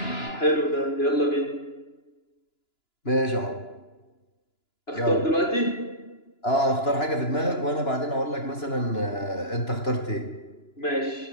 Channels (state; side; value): late; right; 2.9 ms